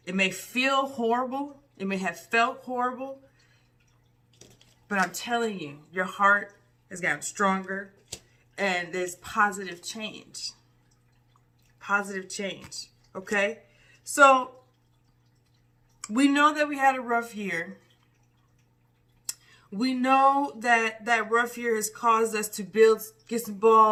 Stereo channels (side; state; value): both; identical; correlation 1.00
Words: It may feel horrible. It may have felt horrible. But I'm telling you, your heart has gotten stronger and there's positive change. Positive change. Okay? So we know that we had a rough year. We know that that rough year has caused us to get some